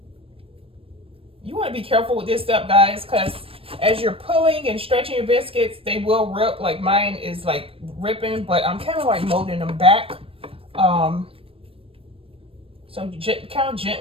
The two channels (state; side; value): late; left; 0.27 ms